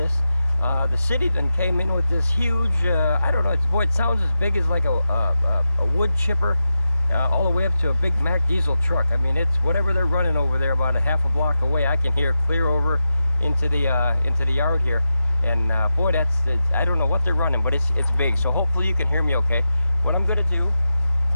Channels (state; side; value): inverted; both; correlation -0.90